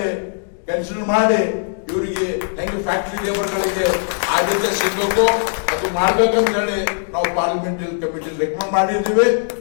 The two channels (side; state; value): right; silent; digital silence